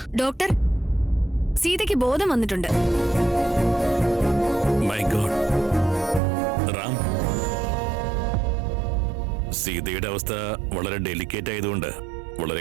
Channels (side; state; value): left; drops out; at 6.2 s